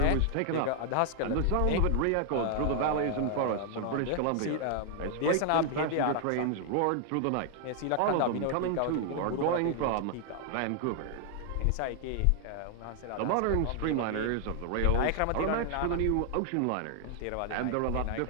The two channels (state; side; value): different; both; correlation 0.00